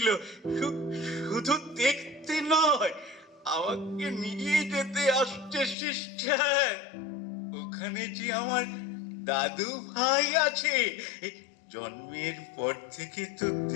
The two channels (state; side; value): drops out; right; at 5.8 s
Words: শুধু দেখতে নয়, আমাকে নিয়ে যেতে আসছে সিস্টার। ওখানে যে আমার দাদু ভাই আছে, জন্মের পর থেকে তো